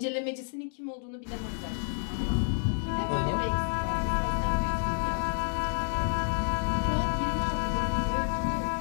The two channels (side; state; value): right; silent; 58 dB below the other